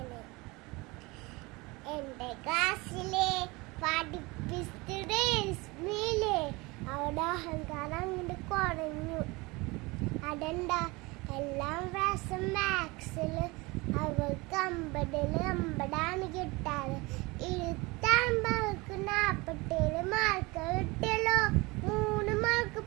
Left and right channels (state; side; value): quieter; left; 24.2 dB